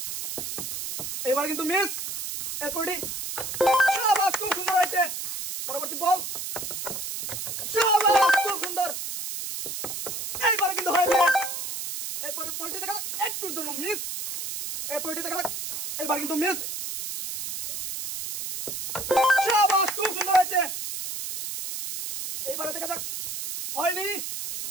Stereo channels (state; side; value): noise; right; hiss, 5 dB below the sound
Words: এবার কিন্তু মিস। এরপরটি শাবাশ, খুব সুন্দর হয়েছে। পরবর্তী বল। শাবাশ, খুব সুন্দর। এইবার কিন্তু হয়েছে। এরপর বলটি দেখা যাক। একটুর জন্য মিস। এরপরটি দেখা যাক। এবার কিন্তু মিস। শাবাশ, খুব সুন্দর হয়েছে। এইবারে দেখা যাক। হয়নি।